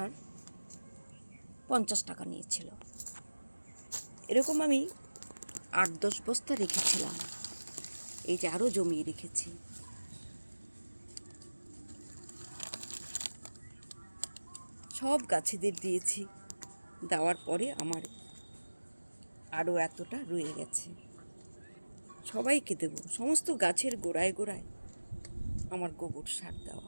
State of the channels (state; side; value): inverted; both; correlation -1.00